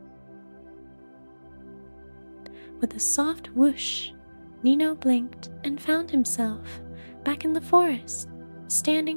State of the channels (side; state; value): both; inverted; correlation -1.00